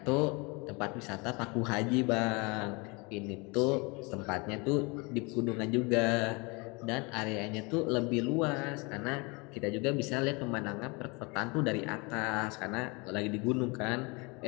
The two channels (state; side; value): quieter; right; 28.3 dB